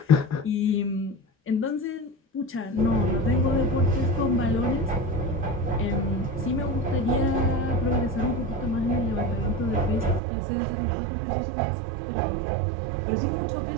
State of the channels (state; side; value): drops out; left; at 10.2 s